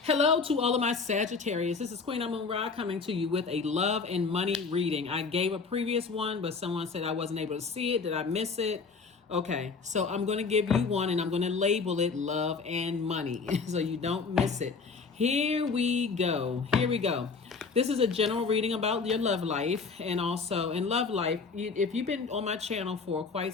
Hello to all of my Sagittarius. This is Queen Amun Ra coming to you with a love and money reading. I gave a previous one, but someone said I wasn't able to see it. Did I miss it? Okay, so I'm going to give you one and I'm going to label it love and money so you don't miss it. Here we go. Here we go. This is a general reading about your love life, and also in love life, if you've been on my channel for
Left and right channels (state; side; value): quieter; right; 4.8 dB